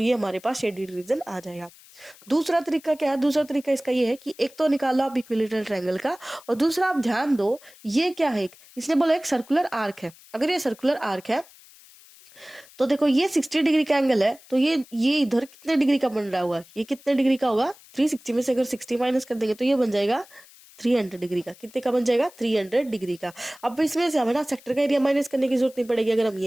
हमारे पास शेडेड रीजन आ जाएगा। दूसरा तरीका क्या है, दूसरा तरीका इसका ये है कि एक तो निकालो आप इक्विलेटरल ट्रायंगल का, और दूसरा आप ध्यान दो ये क्या है, इसने बोला एक सर्कुलर आर्क है। अगर ये सर्कुलर आर्क है तो देखो ये 60 डिग्री का एंगल है, तो ये इधर कितने डिग्री का बन रहा होगा, ये कितने डिग्री का होगा 360 में से अगर 60 माइनस कर देंगे तो ये बन जाएगा 300 डिग्री का। कितने का बन जाएगा 300 डिग्री का। अब इसमें से हमें ना सेक्टर का एरिया माइनस करने की जरूरत नहीं पड़ेगी अगर हम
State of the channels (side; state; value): left; noise; hiss, 24 dB below the sound